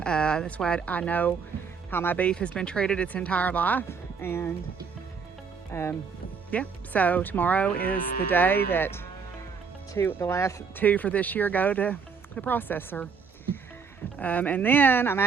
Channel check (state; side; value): quieter; left; 5.7 dB